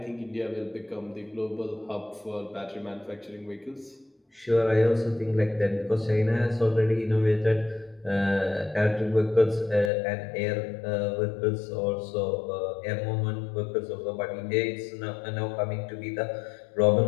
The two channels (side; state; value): right; drops out; at 9.9 s